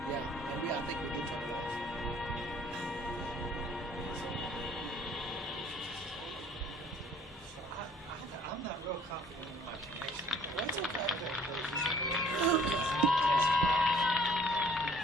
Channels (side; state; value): both; normal; correlation 0.56